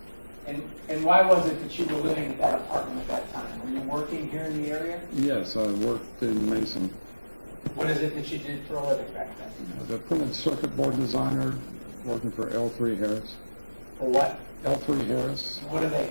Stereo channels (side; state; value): both; inverted; correlation -1.00